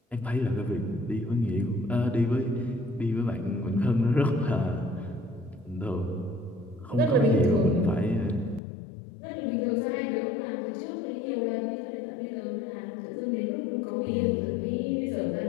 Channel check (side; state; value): right; drops out; at 8.6 s